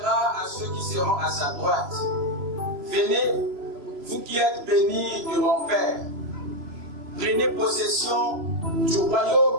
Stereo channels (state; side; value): late; left; 3.0 ms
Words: à ceux qui seront à sa droite: venez, vous qui êtes bénis de mon Père, prenez possession du